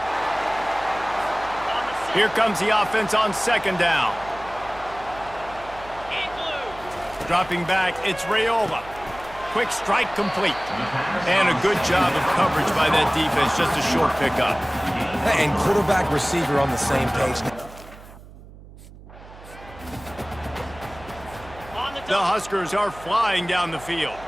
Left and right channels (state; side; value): noise; right; hum, 19 dB below the sound